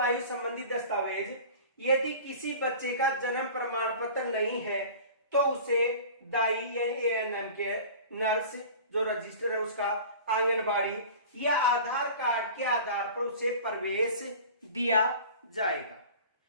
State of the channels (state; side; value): inverted; both; correlation -0.40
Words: संबंधी दस्तावेज, यदि किसी बच्चे का जन्म प्रमाण पत्र नहीं है तो उसे दाई यानी एएनएम के नर्स जो रजिस्टर है उसका, आंगनबाड़ी या आधार कार्ड के आधार पर उसे प्रवेश दिया जाएगा।